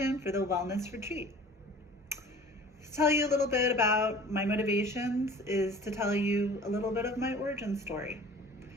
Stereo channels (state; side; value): normal; both; correlation 0.44